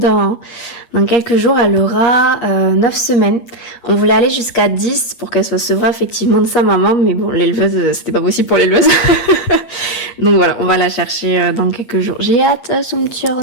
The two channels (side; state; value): right; late; 8.5 ms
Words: quelques jours, elle aura 9 semaines. On voulait aller jusqu'à 10 pour qu'elle soit sevrée effectivement de sa maman, mais bon, l'éleveuse, c'était pas possible pour l'éleveuse. Donc voilà, on va la chercher dans quelques jours. J'ai hâte, son petit